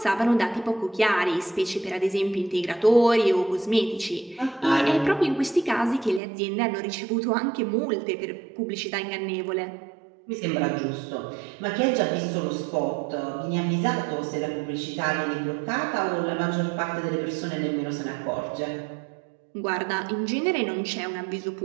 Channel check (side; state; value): left; drops out; at 6.2 s